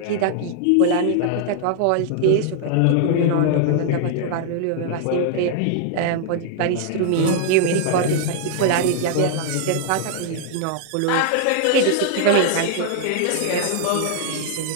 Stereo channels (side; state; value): both; different; correlation 0.00